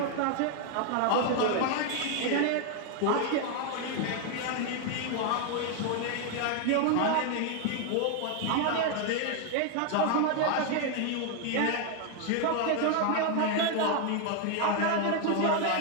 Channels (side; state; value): both; different; correlation 0.01